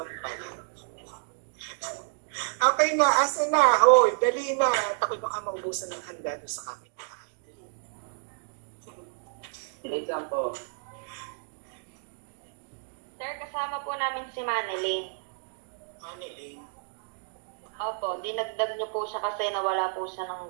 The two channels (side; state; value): left; silent; digital silence